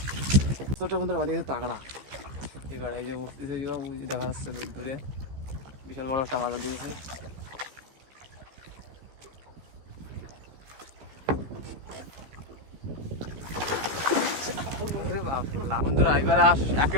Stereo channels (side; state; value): left; late; 15 ms